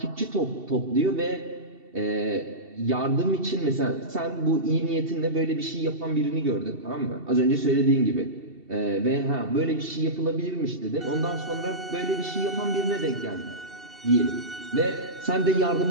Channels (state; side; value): late; left; 2.7 ms